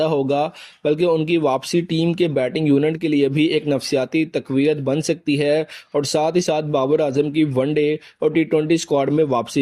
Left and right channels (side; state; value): both; identical; correlation 1.00